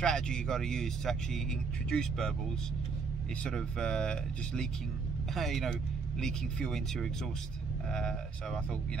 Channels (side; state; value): left; quieter; 4.8 dB